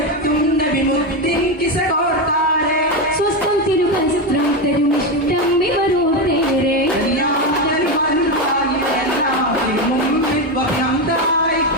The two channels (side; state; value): both; normal; correlation 0.12